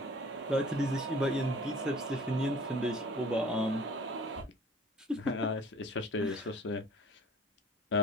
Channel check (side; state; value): both; normal; correlation 0.49